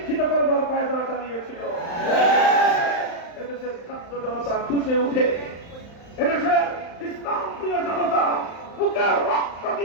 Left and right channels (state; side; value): late; right; 35 ms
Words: করবার পায়তারা চালিয়েছিল। এদেশের ছাত্র জনতা খুশে উঠে, এদেশের ইসলাম প্রিয় জনতা বুকের রক্ত